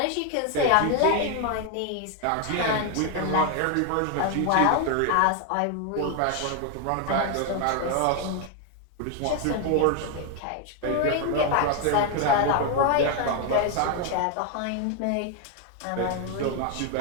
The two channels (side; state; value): both; different; correlation 0.01